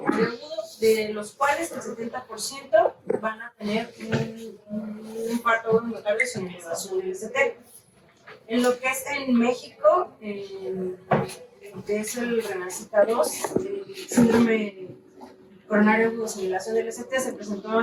agudo, de los cuales el 70% van a tener un infarto involuntario sin elevación del ST. En lo que es en México, que es el Renacita 2, el síndrome coronario agudo sin elevación del ST se presentó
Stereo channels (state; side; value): identical; both; correlation 1.00